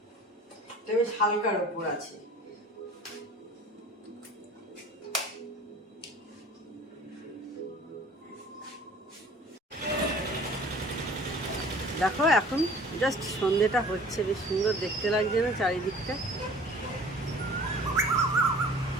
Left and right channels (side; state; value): both; normal; correlation 0.47